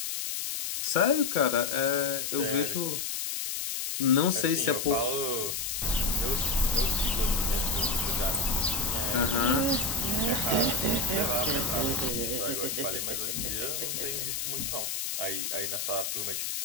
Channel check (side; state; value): left; noise; hiss, 2 dB below the sound